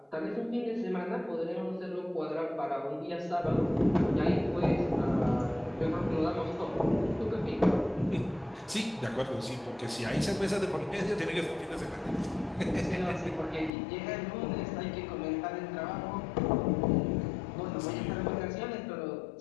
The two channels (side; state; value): right; drops out; at 13.7 s